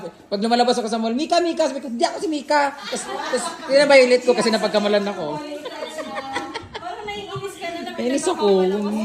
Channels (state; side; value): identical; both; correlation 1.00